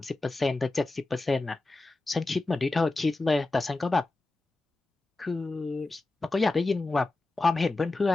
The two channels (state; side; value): quieter; right; 3.1 dB